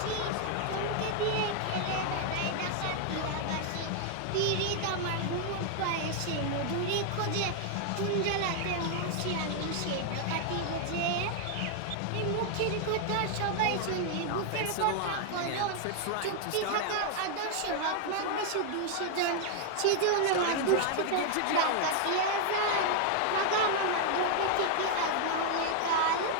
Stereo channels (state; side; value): different; both; correlation 0.00